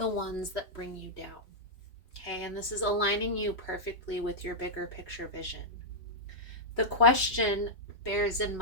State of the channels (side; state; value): right; late; 3.0 ms